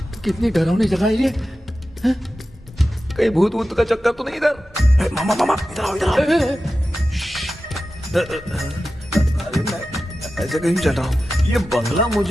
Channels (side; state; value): both; normal; correlation 0.93